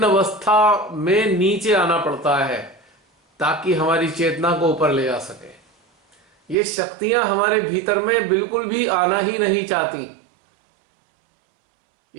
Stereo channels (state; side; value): drops out; left; at 6.6 s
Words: अवस्था में नीचे आना पड़ता है ताकि हमारी चेतना को ऊपर ले जा सके। ये शक्तियां हमारे भीतर में बिल्कुल भी आना ही नहीं चाहती।